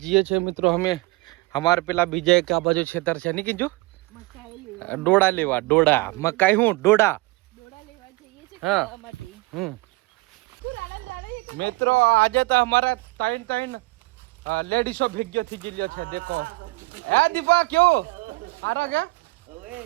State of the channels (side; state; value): left; quieter; 22.8 dB